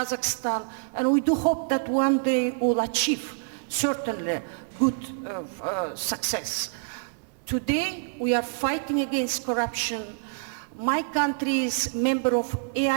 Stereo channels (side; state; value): left; silent; digital silence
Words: and we do hope that one day we'll achieve certainly good success. Today, we are fighting against corruption. My country is member of